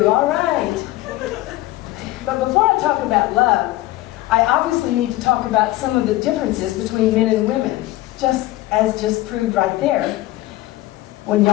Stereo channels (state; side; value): quieter; right; 17.2 dB